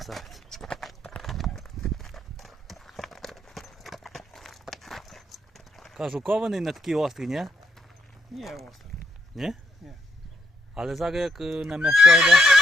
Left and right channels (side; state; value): both; normal; correlation 0.76